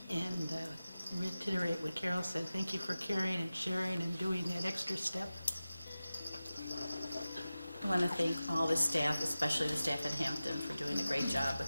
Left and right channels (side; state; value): both; inverted; correlation -0.95